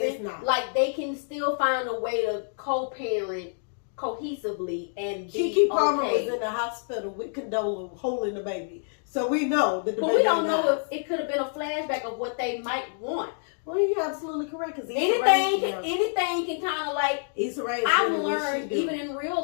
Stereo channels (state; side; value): silent; right; digital silence